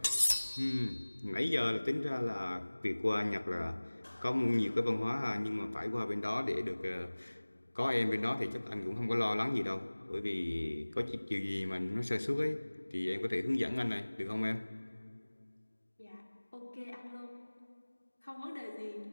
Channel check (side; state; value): both; inverted; correlation -1.00